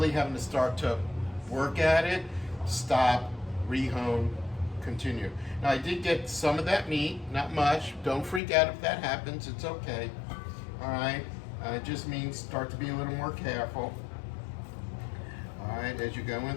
having to start to work at it, stop, rehone, continue. Now I did get some of that meat, not much. Don't freak out if that happens, it's okay. All right, it just means start to be a little more careful. All right, as you're going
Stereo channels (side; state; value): right; drops out; at 8.4 s